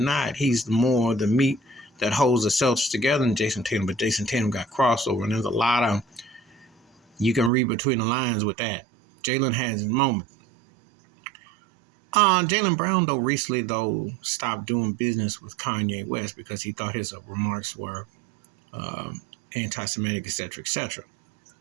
not, he's more the meat that holds the Celtics together than Jason Tatum. But Jason Tatum got crossover, and there's a lot of you can read between the lines with that. Jaylen has his moment. Jaylen Brown, though, recently, stopped doing business with Kanye West because he thought his remarks were anti-Semitic, etc., etc.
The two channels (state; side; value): drops out; left; at 7.5 s